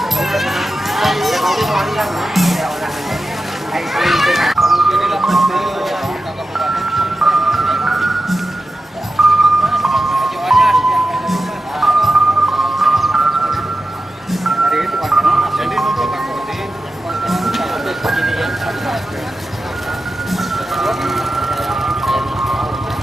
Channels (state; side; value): normal; both; correlation 0.92